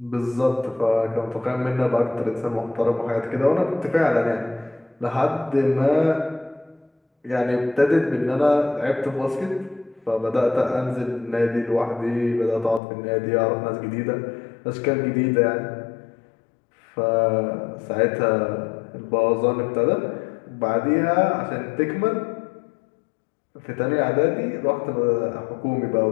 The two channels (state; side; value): drops out; right; at 12.8 s